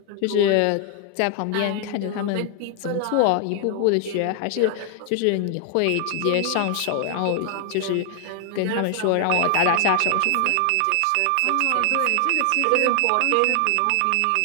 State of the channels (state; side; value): different; both; correlation 0.00